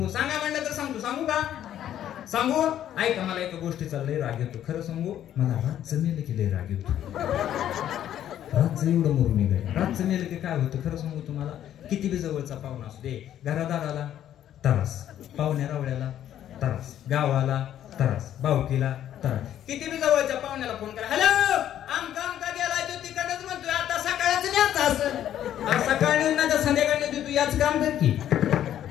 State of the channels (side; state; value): right; quieter; 11.1 dB